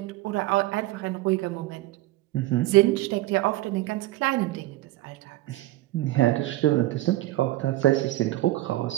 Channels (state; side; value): quieter; left; 16.9 dB